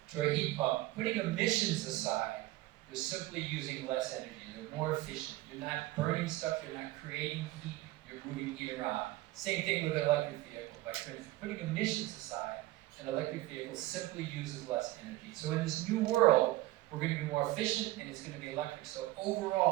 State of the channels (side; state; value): left; quieter; 17.6 dB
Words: to a heat pump, putting emissions aside, you're simply using less energy. They're more efficient. You're not burning stuff, you're not creating heat, you're moving heat around. Same thing with an electric vehicle. By putting emissions aside, an electric vehicle simply uses less energy. So in this new world, we're going to be more efficient and it's going to be electric. So